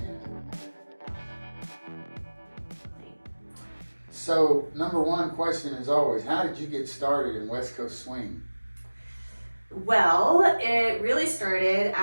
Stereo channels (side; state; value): both; inverted; correlation -1.00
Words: So, number one question is always, how did you get started in West Coast Swing? Well, it really started